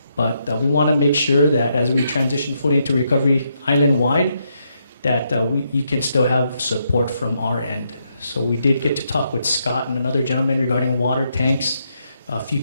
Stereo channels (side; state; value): both; inverted; correlation -0.78